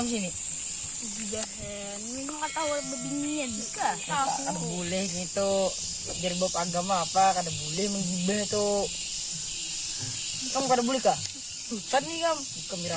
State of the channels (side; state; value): both; identical; correlation 1.00